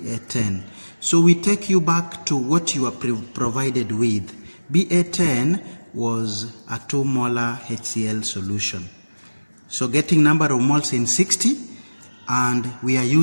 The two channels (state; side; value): inverted; both; correlation -1.00